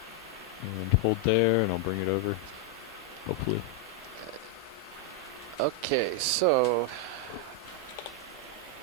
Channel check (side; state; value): both; normal; correlation 0.00